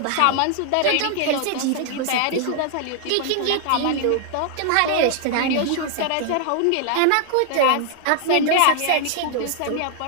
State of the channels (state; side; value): different; both; correlation 0.00